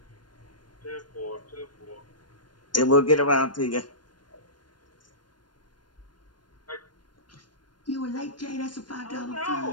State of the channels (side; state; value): right; late; 0.71 ms